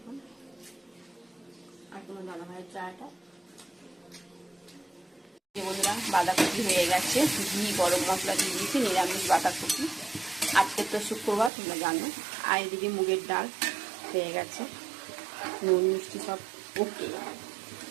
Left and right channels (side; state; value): left; drops out; at 11.5 s